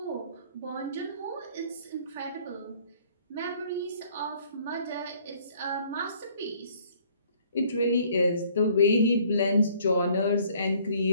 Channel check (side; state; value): both; inverted; correlation -0.59